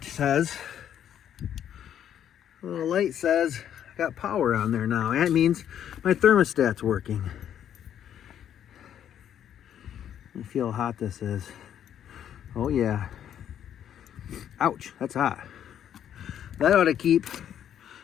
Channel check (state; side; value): quieter; right; 9.9 dB